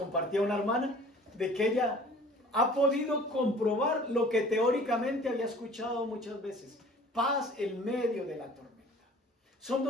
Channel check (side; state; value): both; normal; correlation 0.48